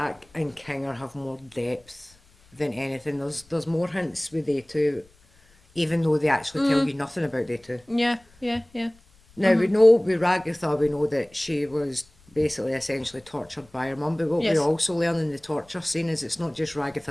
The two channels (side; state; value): left; noise; rumble, 30 dB below the sound